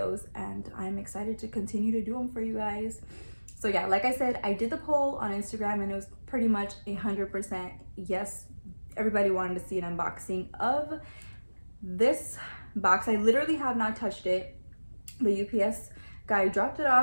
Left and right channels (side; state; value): both; inverted; correlation -1.00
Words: and I'm excited to continue to do them for you guys. So yeah, like I said, I did the poll on Instagram and it was pretty much 100% yes. Everybody wanted to see an unboxing of this box. I literally have not touched it. The UPS guy dropped it